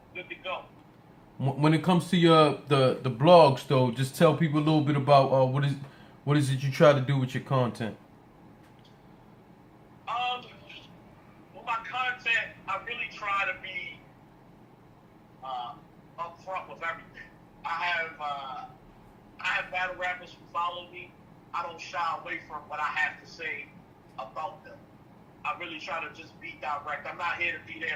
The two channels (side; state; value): both; identical; correlation 1.00